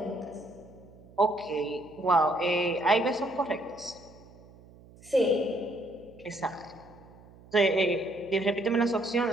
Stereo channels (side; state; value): right; noise; hum, 23 dB below the sound